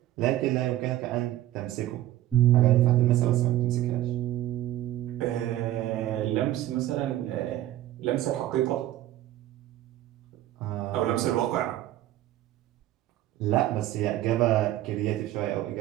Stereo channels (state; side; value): quieter; left; 14.0 dB